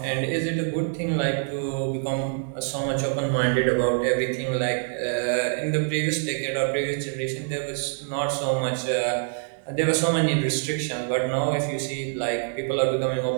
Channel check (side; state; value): left; silent; digital silence